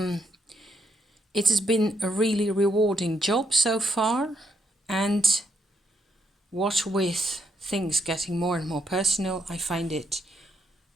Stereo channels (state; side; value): normal; both; correlation 0.76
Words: has been a really rewarding job so far, and what with things getting more and more personal, I find it